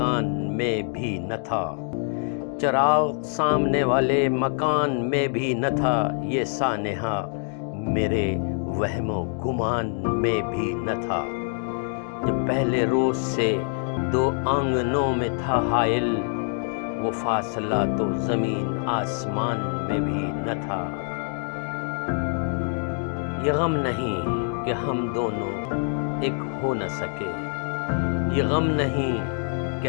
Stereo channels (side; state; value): right; silent; 55 dB below the other